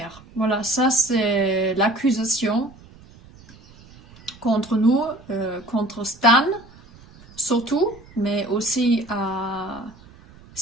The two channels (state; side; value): noise; right; rumble, 23 dB below the sound